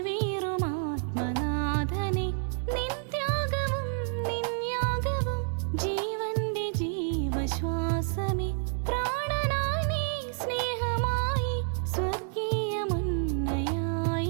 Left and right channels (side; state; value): left; silent; 58 dB below the other